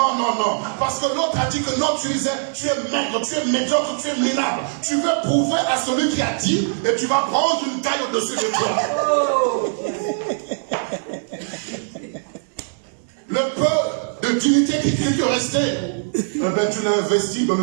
non, non. Parce que l'autre a dit que non, tu es maigre, tu es médiocre, tu es minable. Tu veux prouver à celui qui a dit et tu vas prendre une taille au-dessus de toi. Le peu de dignité qui te restait, eh ben, tu l'as investi dans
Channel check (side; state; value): left; silent; 56 dB below the other